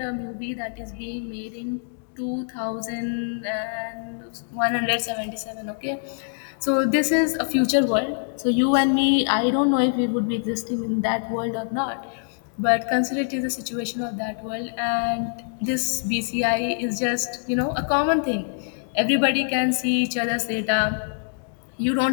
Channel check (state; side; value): silent; right; digital silence